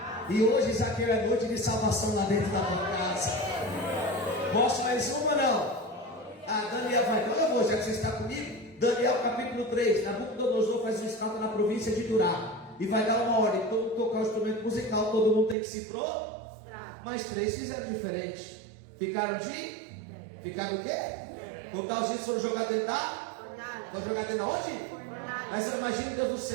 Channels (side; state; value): left; drops out; at 15.6 s